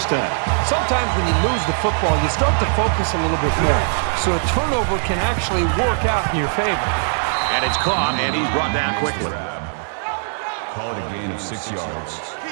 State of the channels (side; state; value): left; silent; 62 dB below the other